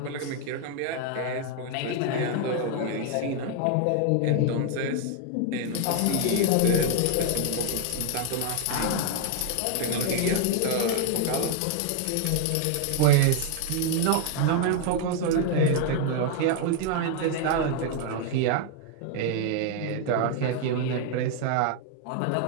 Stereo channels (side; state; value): both; different; correlation 0.00